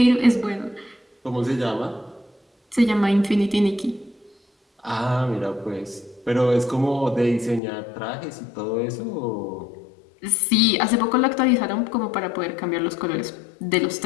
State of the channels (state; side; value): drops out; right; at 7.6 s